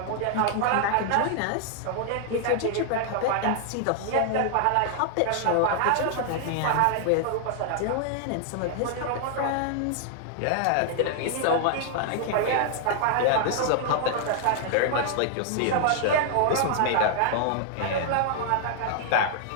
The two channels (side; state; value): both; different; correlation 0.00